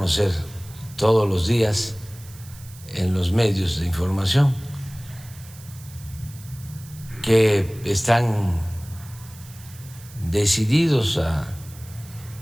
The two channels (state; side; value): noise; right; hiss, 20 dB below the sound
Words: todos los días en los medios de información, que están decididos a